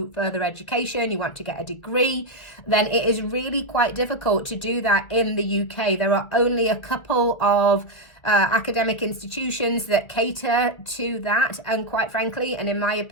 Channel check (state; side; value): late; right; 1.9 ms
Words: further education, you want to get a degree, then it is really quite difficult to do that in the UK. There are only a couple of academic institutions that cater to that, and quite frankly, and in my